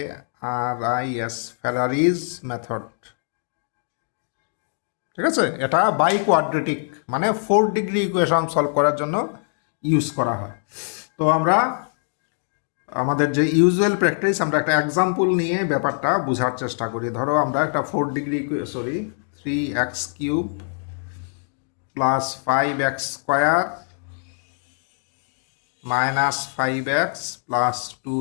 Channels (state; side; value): silent; right; 63 dB below the other